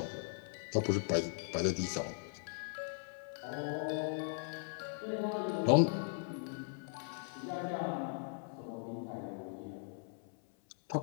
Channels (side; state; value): right; silent; 52 dB below the other